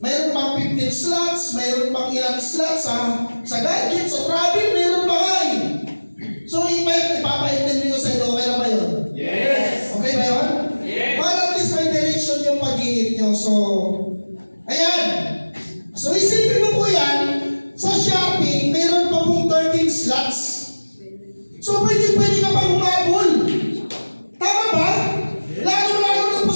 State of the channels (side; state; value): both; inverted; correlation -1.00